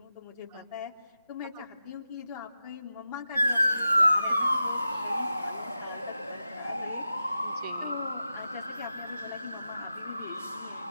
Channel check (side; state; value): both; inverted; correlation -0.91